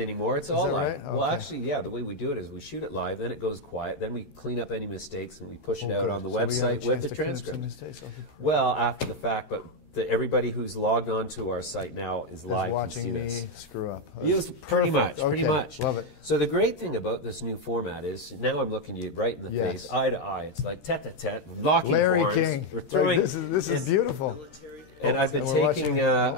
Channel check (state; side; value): late; right; 13 ms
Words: It's all live. Right? Okay. Well, actually, yeah, the way we do it is we shoot it live, then it goes quiet, then we clean up any mistakes and we push it out on the website with the transcript. Well, after the fact, but everybody who's logged on to our site now is live. Watching me screw up. Yes, pretty much. Love it. So the great thing about this new format is now I'm looking you right in the face, eye to eye. It's like tete-a-tete, locking Larry horns. King. We're throwing. This is beautiful. And I've